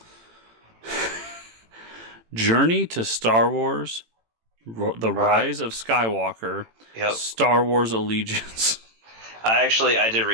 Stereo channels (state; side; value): late; left; 18 ms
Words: Journey to Star Wars, The Rise of Skywalker, Star Wars Allegiance. I did